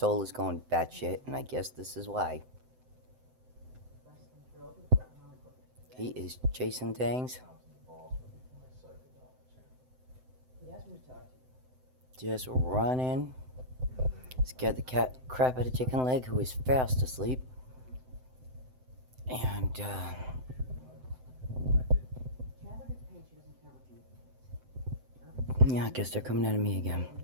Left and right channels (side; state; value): left; late; 7.8 ms